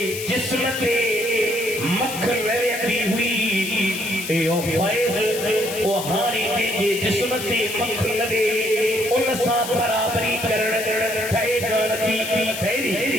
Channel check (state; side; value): noise; left; hiss, 8 dB below the sound